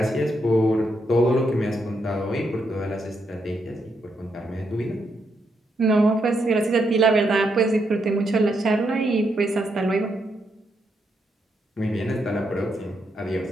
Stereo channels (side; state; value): both; normal; correlation 0.79